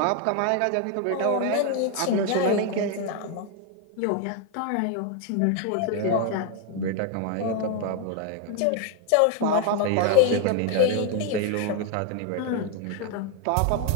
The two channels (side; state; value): both; different; correlation 0.01